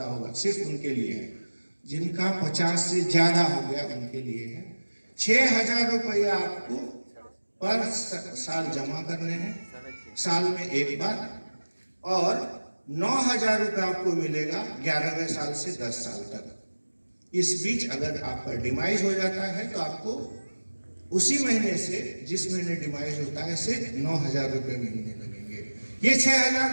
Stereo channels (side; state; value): both; inverted; correlation -1.00